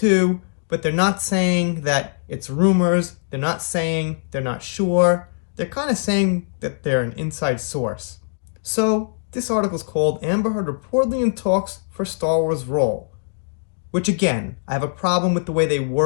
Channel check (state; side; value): silent; right; digital silence